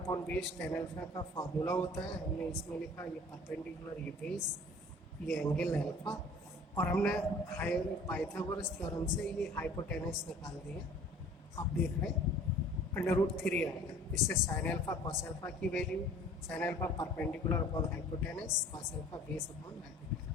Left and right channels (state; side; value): normal; both; correlation 0.48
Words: base tan alpha का फार्मूला होता है, हमने इसमें लिखा ये परपेंडिकुलर, ये बेस, ये एंगल अल्फा, और हमने पाइथागोरस थ्योरम से ये हाइपोटेनस निकाल दिया। आप देख रहे हैं √3 आएगा, इससे साइन अल्फा कॉस अल्फा की value, sine alpha perpendicular upon hypotenuse, cos alpha base upon